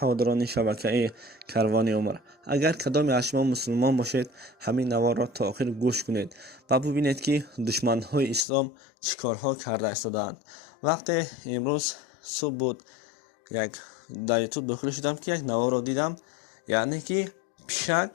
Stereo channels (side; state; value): right; drops out; at 8.5 s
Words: шабакаи Карвони Умр, агар кадоме аз шумо мусулмон бошед, ҳамин наворро то охир гӯш кунед ва бубинед ки душманҳои ислом чӣ корҳо карда истодаанд. Вақте имрӯз субҳ буд, дар ютуб дохил шудам ки як наворро дидам, яъне ки пишак